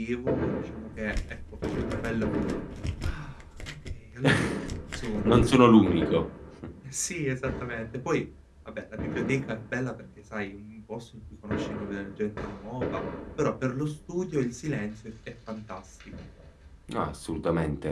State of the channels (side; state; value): both; identical; correlation 1.00